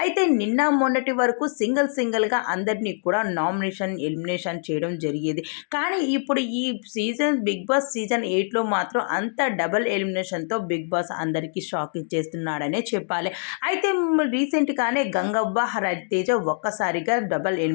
అయితే నిన్న మొన్నటి వరకు సింగిల్గా అందరినీ కూడా నామినేషన్ ఎలిమినేషన్ చేయడం జరిగేది. కానీ ఇప్పుడు ఈ బిగ్ బాస్ సీజన్ 8లో మాత్రం అంత డబుల్ ఎలిమినేషన్తో బిగ్ బాస్ అందరికీ షాక్ ఇచ్చేస్తున్నాడనే చెప్పాలి. అయితే రీసెంట్గానే గంగవ్వ, రవితేజ ఒక్కసారిగా డబుల్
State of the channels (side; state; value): right; silent; digital silence